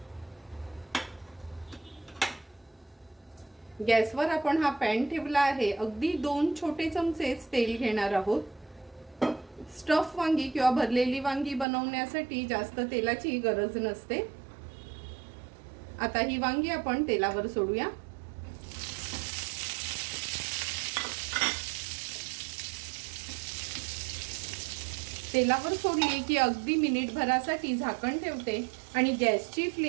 गॅसवर आपण हा पॅन ठेवला आहे. अगदी 2 छोटे चमचेच तेल घेणार आहोत. स्टफ वांगी किंवा भरलेली वांगी बनवण्यासाठी जास्त तेलाची गरज नसते. आता ही वांगी आपण तेलावर सोडूया. तेलावर सोडली की अगदी मिनिटभरासाठी झाकण ठेवते आणि गॅसची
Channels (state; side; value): drops out; left; at 11.7 s